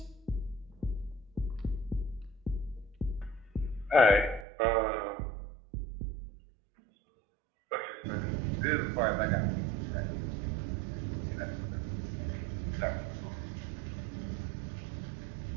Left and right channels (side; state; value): left; drops out; at 4.5 s